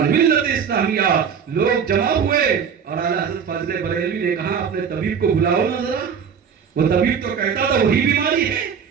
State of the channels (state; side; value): quieter; left; 7.1 dB